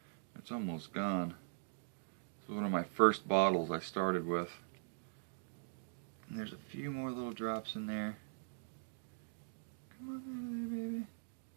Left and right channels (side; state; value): left; silent; digital silence